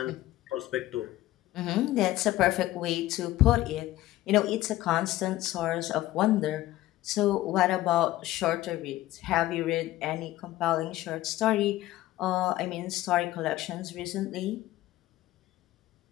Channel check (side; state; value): right; quieter; 15.8 dB